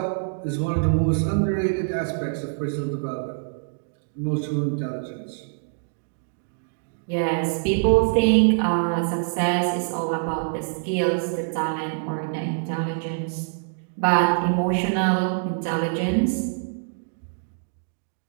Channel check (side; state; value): left; silent; digital silence